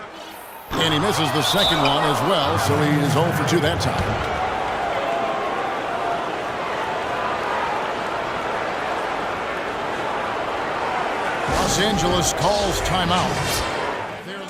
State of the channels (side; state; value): both; identical; correlation 1.00